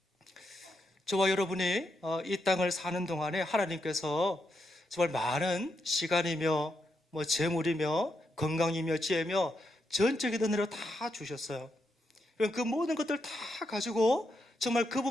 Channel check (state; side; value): normal; both; correlation 0.82